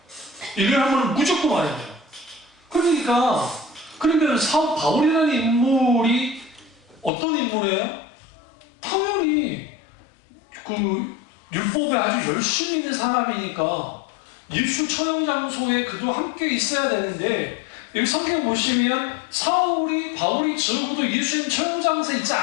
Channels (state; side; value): drops out; right; at 7.1 s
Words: 1년에 한 번은 무조건 와야 돼요. 그러니까 그러면 바울이라는 인물이 어떤 인물이에요? 당연히 율법에 아주 열심히 있는 사람이니까 예수 처형 장소에 그도 함께 있어야 되는데 여기 성경 보시면 바울이 적어도 예수님 처형 장소에 있지